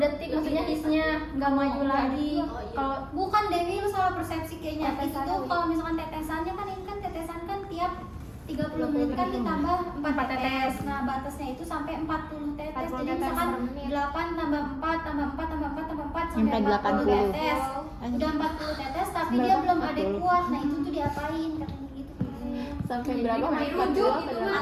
maksudnya hisnya enggak maju lagi. Oh, iya. Kalau Bukan Dewi, lu salah persepsi kayaknya. Itu Tetesannya tuh udah. kalau misalkan tetesannya kan ini kan tetesan kan tiap 30 menit kan ditambah 4 tetes. Nah, batasnya itu sampai 40 tetes. 40 Jadi tetes misalkan per menit. 8 tambah 4 tambah 4 tambah 4 tambah 4 Sampai sampai 40 80. tetes. Udah 40 tetes tapi dia belum adekuat. Nah, itu tuh diapain katanya gitu. Sampai berapa? Dirujuk itu mah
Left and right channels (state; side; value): identical; both; correlation 1.00